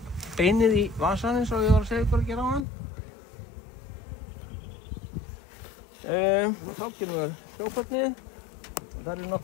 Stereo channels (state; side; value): drops out; right; at 2.7 s